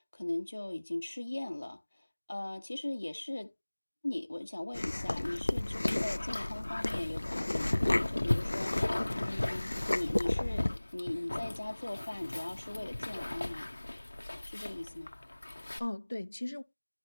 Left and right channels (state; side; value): inverted; both; correlation -1.00